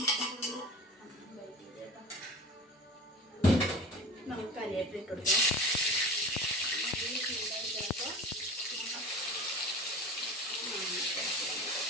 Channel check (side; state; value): both; normal; correlation 0.36